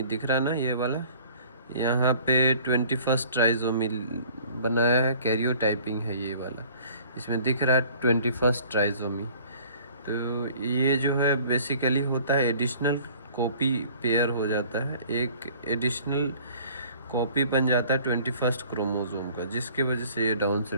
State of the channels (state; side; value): inverted; both; correlation -0.51